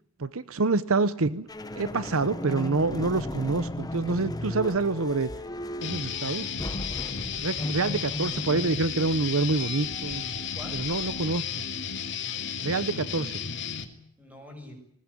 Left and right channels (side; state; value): both; normal; correlation 0.15